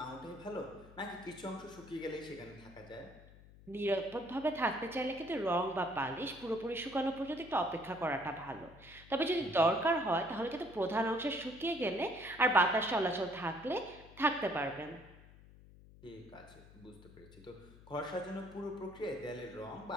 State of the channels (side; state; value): left; noise; hum, 21 dB below the sound